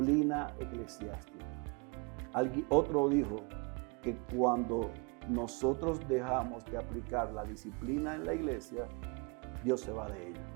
eclesiástica. Otro dijo que cuando nosotros dejamos de aplicar la disciplina en la iglesia, Dios se va de ella.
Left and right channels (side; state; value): left; quieter; 31.8 dB